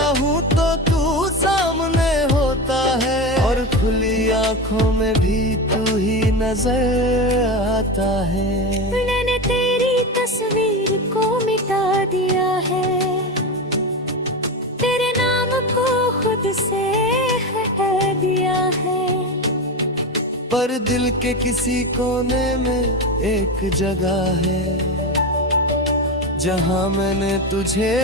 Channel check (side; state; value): both; normal; correlation 0.20